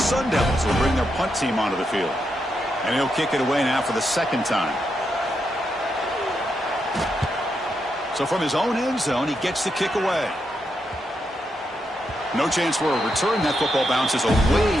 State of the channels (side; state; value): both; normal; correlation 0.83